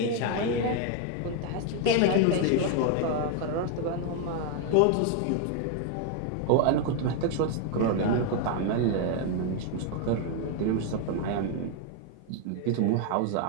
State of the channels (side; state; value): both; different; correlation 0.01